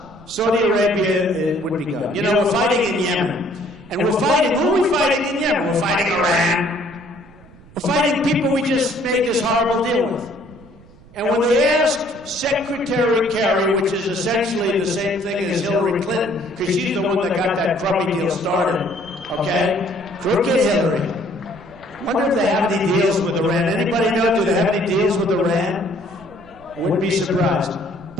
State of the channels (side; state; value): right; noise; rumble, 23 dB below the sound